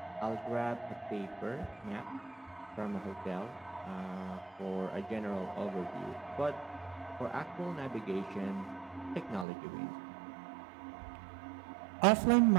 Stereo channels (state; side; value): drops out; left; at 9.5 s